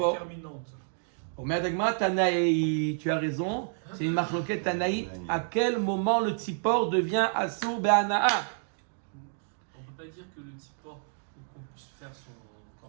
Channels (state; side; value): silent; left; digital silence